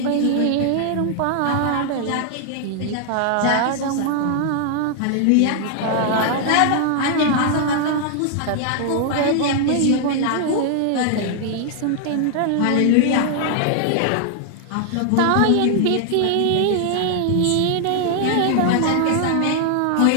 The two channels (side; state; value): both; different; correlation 0.00